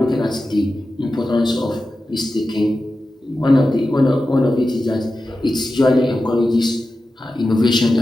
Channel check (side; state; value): both; normal; correlation 0.93